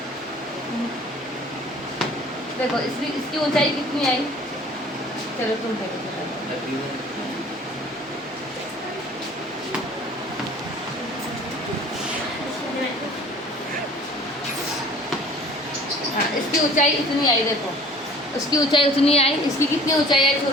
देखो इसकी ऊंचाई कितनी आई? चलो तुम देखो। हाँ, इसकी ऊंचाई इतनी आई। देखो उसकी ऊंचाई उतनी आई, इसकी कितनी ऊंचाई आई?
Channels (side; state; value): both; normal; correlation 0.49